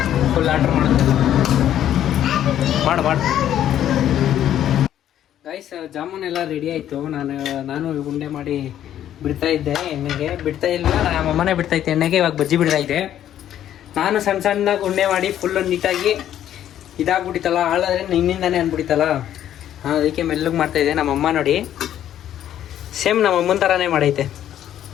ಫುಲ್ ಆರ್ಡ್ರ್ ಮಾಡುತ್ತಲ್ಲ. ಮಾಡು ಗೈಸ್. ಜಾಮೂನ್ ಎಲ್ಲ ರೆಡಿ ಆಯಿತು. ನಾನು ಉಂಡೆ ಮಾಡಿ ಬಿಡ್ತಾ ಇದ್ದೆ. ಎಣ್ಣೆಗೆ ಬಿಡ್ತಾ ಇಲ್ಲ, ನಮ್ಮಮ್ಮನೇ ಬಿಡ್ತಾ ಇದ್ದೆ ಎಣ್ಣೆಗೆ. ಇವಾಗ ಬಜ್ಜಿ ಬಿಡ್ತಾ ಇದ್ದೆ. ನಾನು ಸಣ್ಣದಾಗಿ ಉಂಡೆ ಮಾಡಿ ಫುಲ್ಲು ನೀಟಾಗಿ ಇದಾಗ್ಬಿಟ್ಟಿತ್ತಲ್ಲ, ಹಾಳಾದ್ರೆ ನಿನ್ನಿಂದಾನೇ ಅಂದ್ಬಿಟ್ಟಿತ್ತಲ್ಲ. ಅದಕ್ಕೆ ಮೆಲ್ಲಗೆ ಮಾಡ್ತಾಯಿದ್ದೆ. ನಮ್ಮಮ್ಮ ನೋಡಿ ಸೇಮ್ ನಮ್ಮಮ್ಮನ ಥರನೇ ಮಾಡೈತೆ.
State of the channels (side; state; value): right; quieter; 11.1 dB